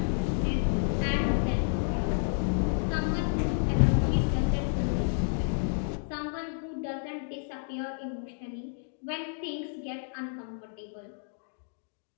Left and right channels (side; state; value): right; silent; digital silence